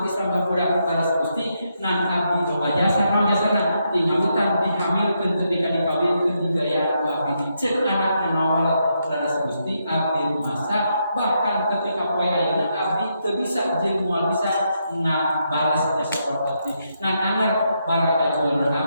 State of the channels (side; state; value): both; inverted; correlation -0.80